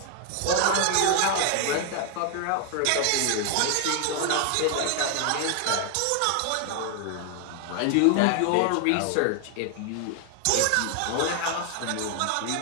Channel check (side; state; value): both; different; correlation 0.00